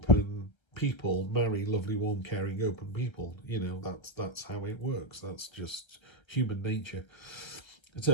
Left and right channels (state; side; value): late; right; 1.3 ms